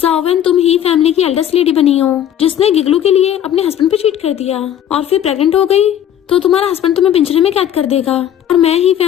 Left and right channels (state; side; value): quieter; right; 10.4 dB